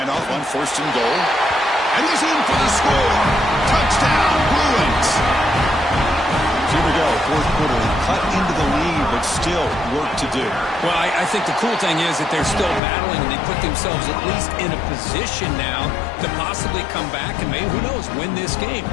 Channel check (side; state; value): right; drops out; at 12.8 s